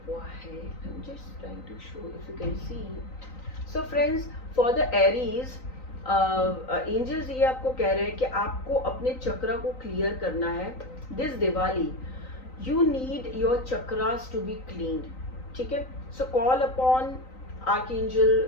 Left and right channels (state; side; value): late; right; 3.9 ms